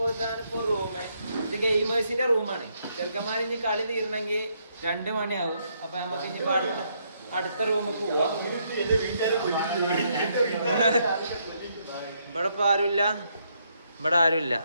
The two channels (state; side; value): inverted; both; correlation -0.74